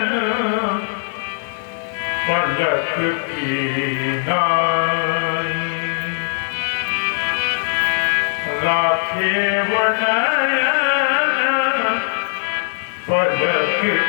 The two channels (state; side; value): silent; right; digital silence